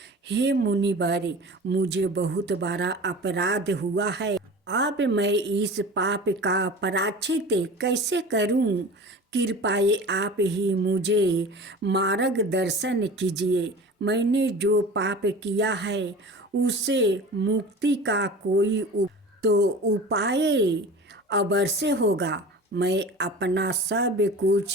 हे मुनिवर, मुझे बहुत बड़ा अपराध हुआ है। अब मैं इस पाप का प्रायश्चित कैसे करूं? कृपया आप ही मुझे मार्गदर्शन कीजिए। मैंने जो पाप किया है उससे मुक्ति का कोई तो उपाय अवश्य होगा। मैं अपना सब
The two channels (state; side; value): normal; both; correlation 0.37